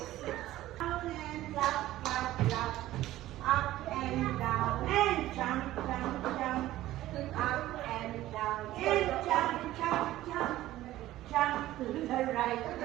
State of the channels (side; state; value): left; quieter; 15.1 dB